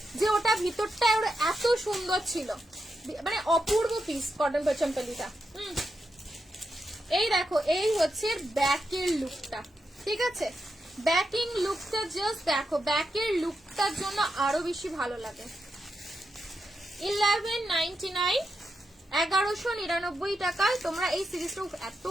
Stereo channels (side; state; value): both; normal; correlation 0.86